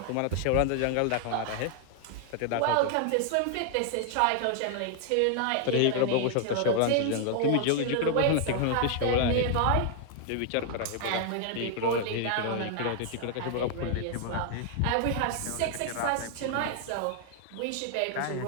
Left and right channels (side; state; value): both; different; correlation 0.00